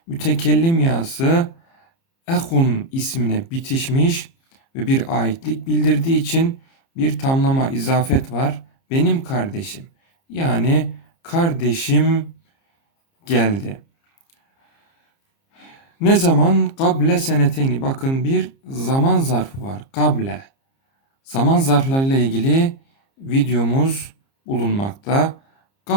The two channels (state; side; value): late; right; 30 ms